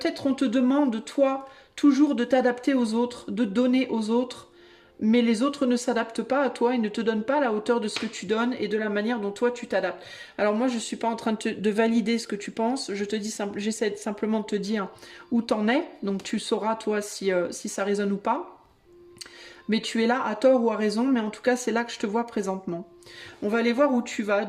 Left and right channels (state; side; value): identical; both; correlation 1.00